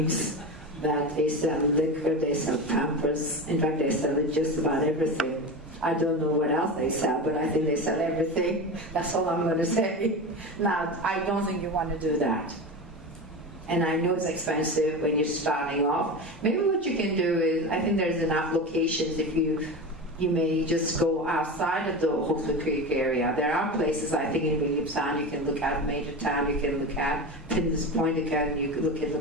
that they sell liquor, they sell Pampers. In fact, they sell just about everything. I don't know what else they sell, but I think they sell everything. That's all I'm going to say. Now, I don't think you want to do that. And I know it's expensive when you're starting off. Maybe what you can do is, I think there's enough locations if you may just go outside of the Hawksbill Creek area. There are places, I think, in Williamstown you can look at, Major Town you can look at, Pinders Point you can look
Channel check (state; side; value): normal; both; correlation 0.25